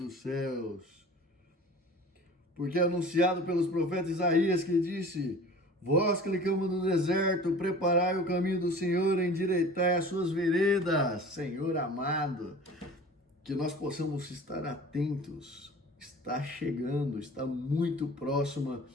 céus. Porque é anunciado pelos profetas Isaías que disse: vós que clamamos no deserto, preparai o caminho do Senhor, endireitai as suas veredas. Senhor amado, que nós possamos estar atentos. Está chegando, está muito próxima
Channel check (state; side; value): normal; both; correlation 0.42